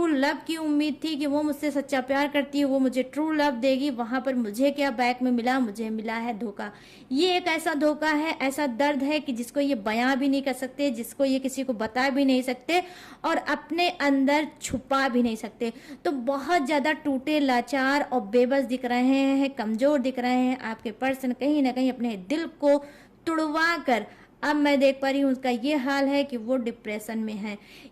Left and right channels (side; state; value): both; identical; correlation 1.00